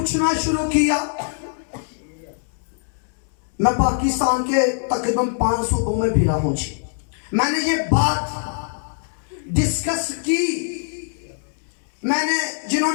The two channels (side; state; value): right; silent; 64 dB below the other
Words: शुरू किया। मैं पाकिस्तान के तकरीबन 5 सूबों में फिरा हूं जी। मैंने ये बात डिस्कस की। मैंने